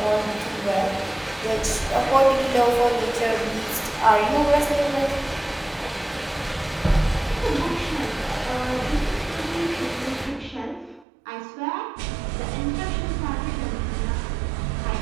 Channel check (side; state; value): left; drops out; at 11.1 s